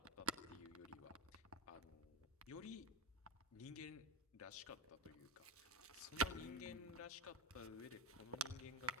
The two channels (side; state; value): both; normal; correlation 0.15